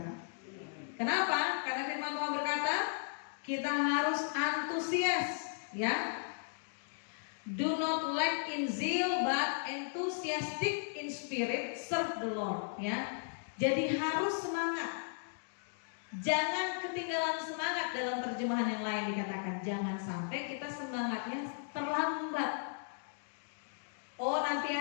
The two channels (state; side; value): silent; right; digital silence